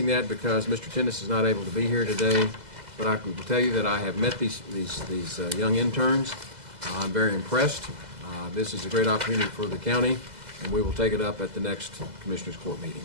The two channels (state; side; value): late; left; 2.0 ms